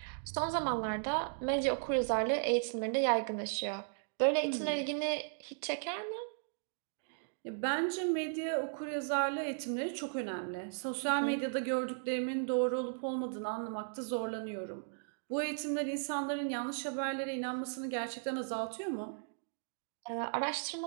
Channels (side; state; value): left; silent; digital silence